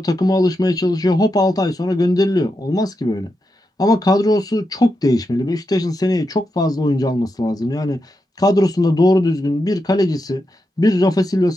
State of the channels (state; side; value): normal; both; correlation 0.86